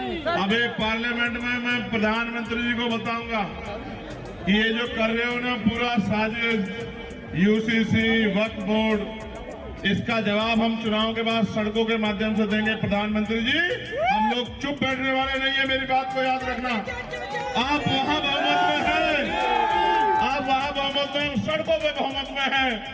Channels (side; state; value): both; identical; correlation 1.00